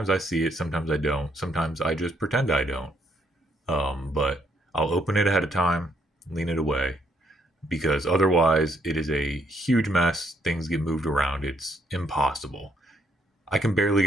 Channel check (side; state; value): both; normal; correlation 0.72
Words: I see it, sometimes I don't. Sometimes I just pretend I don't. But I'll open it ahead of time, lean it away, because otherwise it is a huge mess. Things get moved around. It's impossible. I can barely